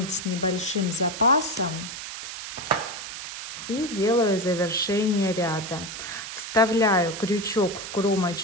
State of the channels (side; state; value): right; noise; hiss, 8 dB below the sound